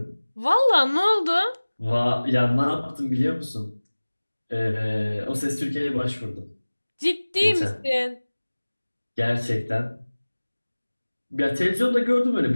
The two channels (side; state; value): both; inverted; correlation -1.00